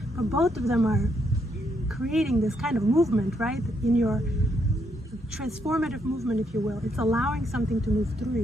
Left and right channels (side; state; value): both; normal; correlation 0.76